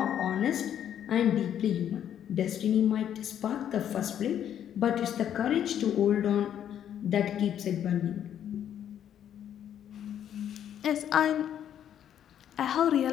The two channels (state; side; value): quieter; right; 9.9 dB